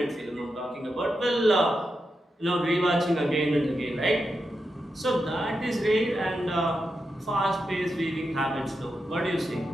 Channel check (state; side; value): normal; both; correlation 0.87